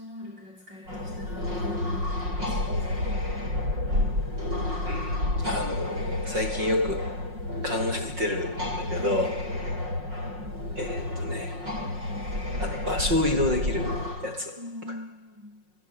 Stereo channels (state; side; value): late; left; 5.5 ms